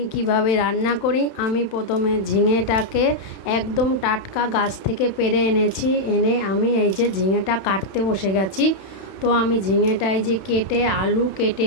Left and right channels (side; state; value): right; late; 31 ms